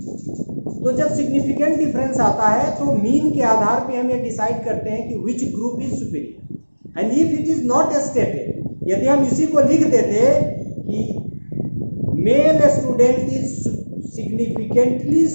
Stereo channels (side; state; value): both; inverted; correlation -1.00